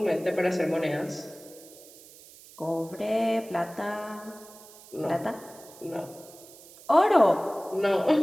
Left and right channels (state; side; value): noise; right; hiss, 21 dB below the sound